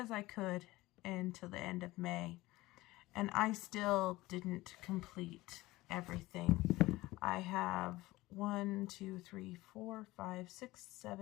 I could into the end of May, and I still didn't complete everything. I have 1, 2, 3, 4, 5, 6,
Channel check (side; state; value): right; quieter; 19.0 dB